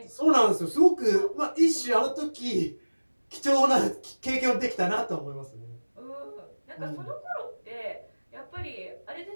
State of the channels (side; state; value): both; inverted; correlation -1.00